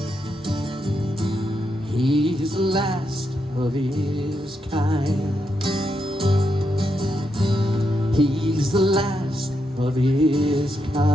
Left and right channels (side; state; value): both; normal; correlation 0.82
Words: He's the last of his kind. He's the last of his